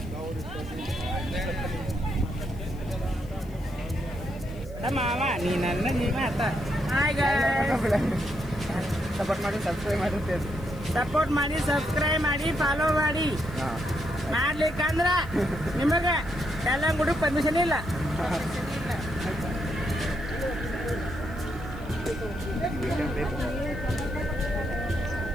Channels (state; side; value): noise; left; hiss, 26 dB below the sound